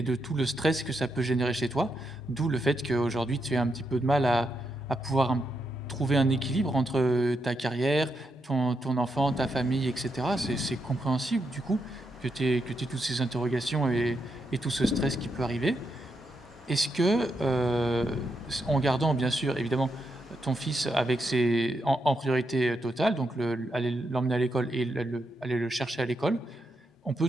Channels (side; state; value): both; normal; correlation 0.82